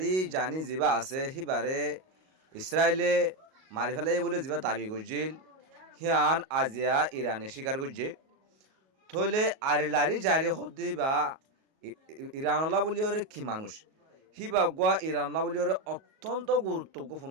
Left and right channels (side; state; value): left; late; 38 ms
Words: জানি যিবা আছে সিবারে ইসরায়েলে মারি ফেলাই বলে যিবা দাবি করছিল সিয়ান আজিয়া ইরানে স্বীকার করছে থইলে আলি লারি জারি হদ্দি বা ইরানলা বলি ওরে কি মানুষ সিবা গোয়া ইরানলা বলি ওরে অত্যন্ত